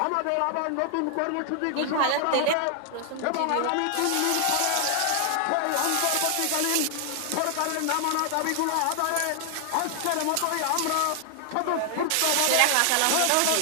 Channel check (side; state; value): both; different; correlation 0.00